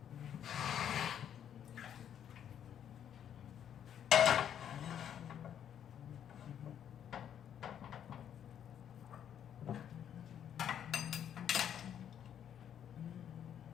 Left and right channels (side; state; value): right; quieter; 9.3 dB